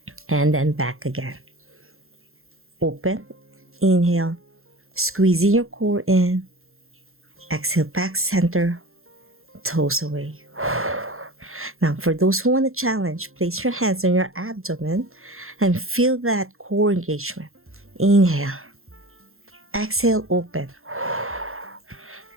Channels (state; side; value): late; left; 0.62 ms